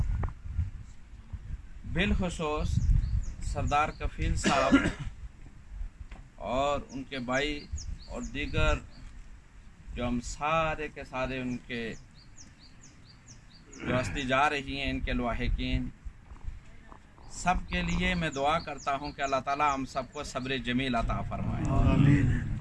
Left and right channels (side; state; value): both; identical; correlation 1.00